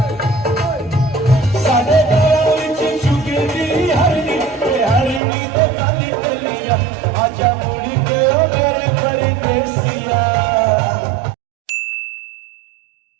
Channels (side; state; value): left; drops out; at 5.2 s